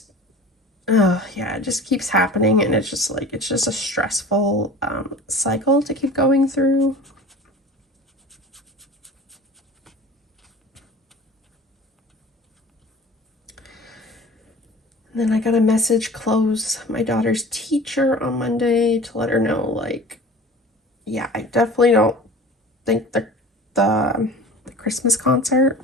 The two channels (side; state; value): both; normal; correlation 0.41